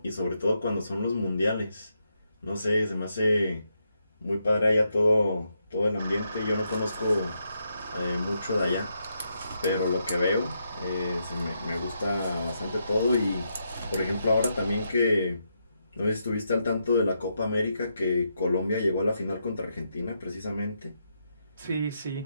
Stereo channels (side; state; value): both; inverted; correlation -0.81